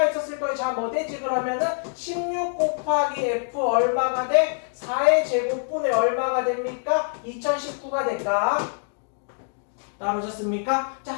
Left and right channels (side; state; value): right; silent; digital silence